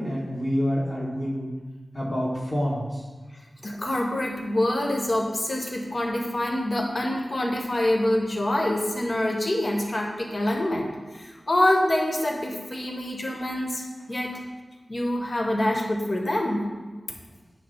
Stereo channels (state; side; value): normal; both; correlation 0.97